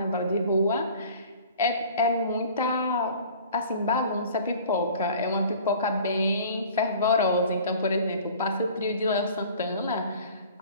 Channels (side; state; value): both; inverted; correlation -0.47